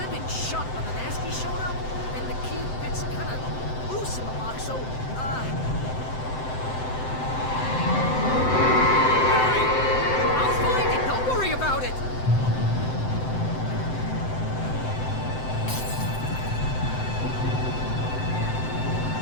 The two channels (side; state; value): right; late; 7.8 ms